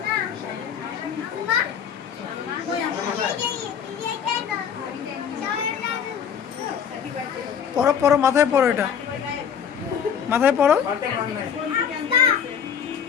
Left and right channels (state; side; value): quieter; right; 7.9 dB